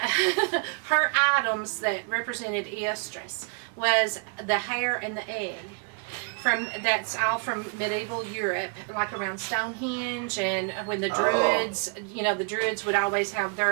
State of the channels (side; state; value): left; quieter; 37.4 dB